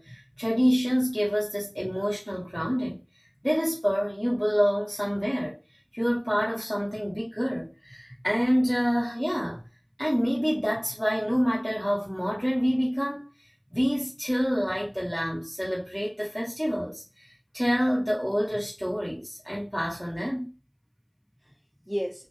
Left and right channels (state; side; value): identical; both; correlation 1.00